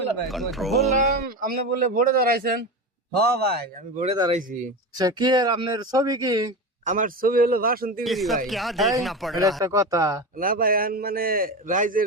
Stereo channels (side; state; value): both; normal; correlation 0.23